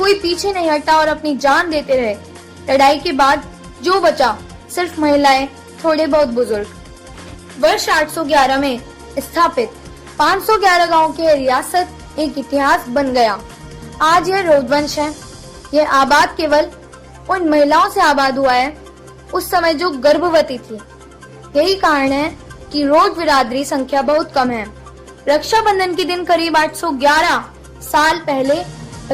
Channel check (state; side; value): identical; both; correlation 1.00